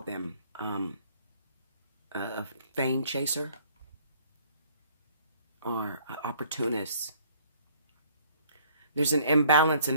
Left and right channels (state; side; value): inverted; both; correlation -0.59